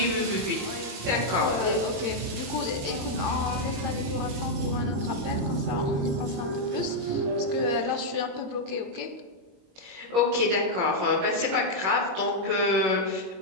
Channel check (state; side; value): late; left; 21 ms